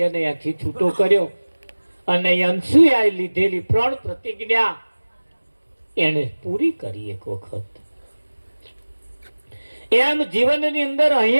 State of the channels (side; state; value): both; inverted; correlation -1.00